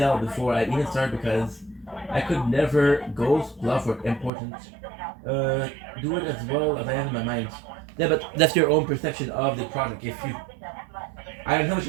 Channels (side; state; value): left; drops out; at 4.3 s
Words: before I even started because I could never ghost, bluff, or important. Do it as well as I have in my mind. Yeah, but that's your own perception of the project. If you, I don't know what